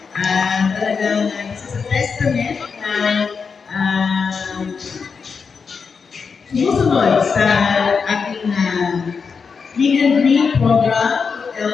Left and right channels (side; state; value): right; quieter; 5.5 dB